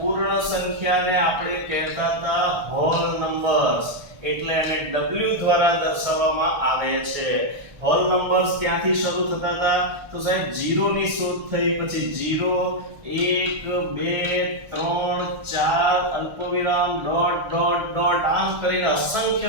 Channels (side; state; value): left; late; 1.3 ms